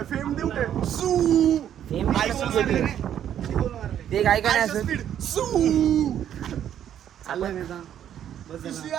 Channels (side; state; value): left; quieter; 10.2 dB